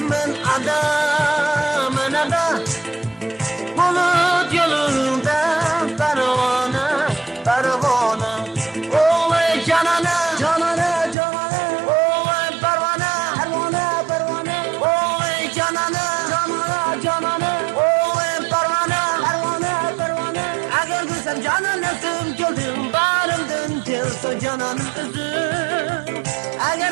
ben adam, ben adam. Bulut yolunda pervane, pervane. Oy canana, canana, canana. Oy pervane, pervane, pervane. Oy canana, canana, canana. Oy pervane, pervane, pervane. Eğer gülsem cananasım güldüm, barımdın gelse cananın üzüm. Eğer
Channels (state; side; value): drops out; left; at 11.2 s